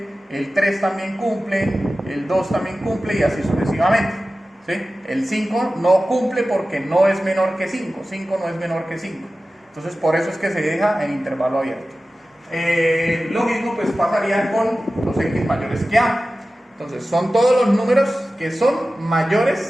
el 3 también cumple, el 2 también cumple y así sucesivamente, ¿sí? El 5 no cumple porque no es menor que 5, 5 no es menor que 5. Entonces por eso es que se deja en intervalo abierto. Lo mismo pues pasaría con los x mayores que a. Entonces son todos los números que son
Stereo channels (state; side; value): normal; both; correlation 0.95